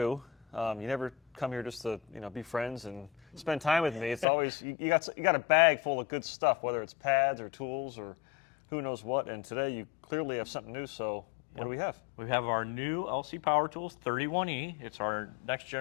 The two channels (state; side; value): drops out; right; at 4.2 s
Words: You never come here just to be friends and spend time with me. It's always you got a bag full of good stuff, whether it's pads or tools or who knows what. And today you clearly have something new. So what do we have? We have our new LC Power Tools 31E. It's our next